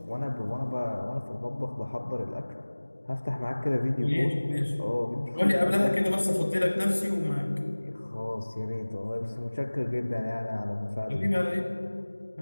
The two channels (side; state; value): both; inverted; correlation -1.00